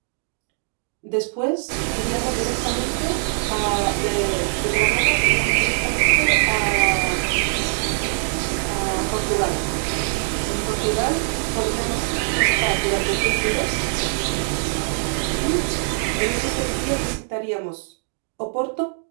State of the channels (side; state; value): left; silent; digital silence